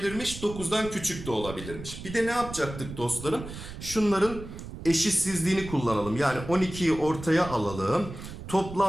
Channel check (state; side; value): noise; right; rumble, 11 dB below the sound